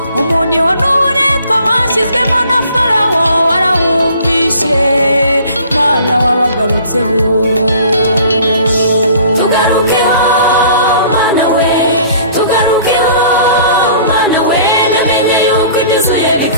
umuniho n'uburetwa bashyizwemo na Farawo warawumvishe Mana wabagarutseho tugarukeho Mana we tugarukeho Mana we namenye yuko ibyuzuye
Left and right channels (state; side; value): inverted; both; correlation -0.51